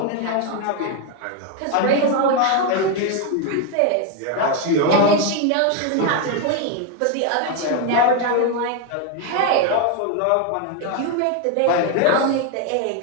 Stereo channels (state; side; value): different; both; correlation 0.01